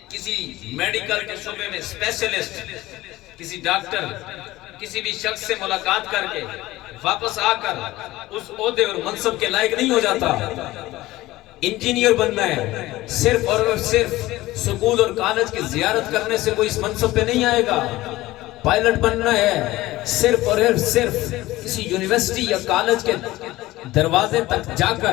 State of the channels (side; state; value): right; quieter; 17.7 dB